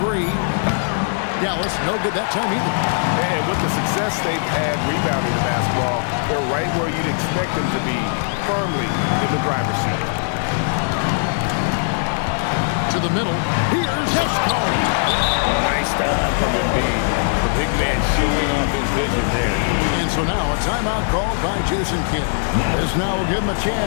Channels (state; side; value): silent; right; 66 dB below the other